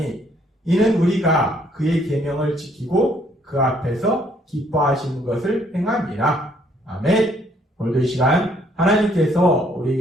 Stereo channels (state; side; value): normal; both; correlation 0.66